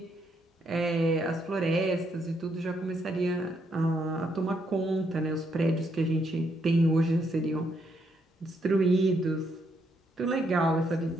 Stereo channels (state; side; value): normal; both; correlation 0.75